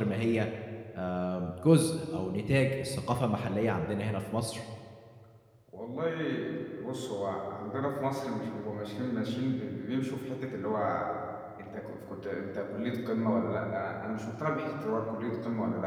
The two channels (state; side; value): identical; both; correlation 1.00